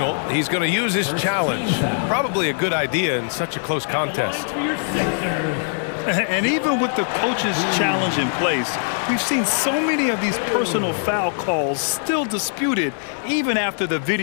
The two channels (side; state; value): right; silent; digital silence